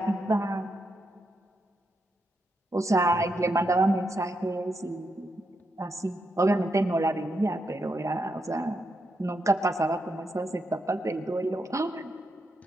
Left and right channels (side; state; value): both; normal; correlation 0.82